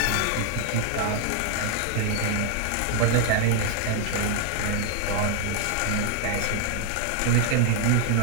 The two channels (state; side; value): different; both; correlation 0.00